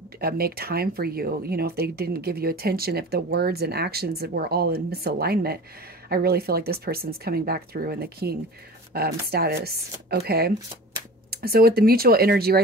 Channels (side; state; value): both; normal; correlation 0.38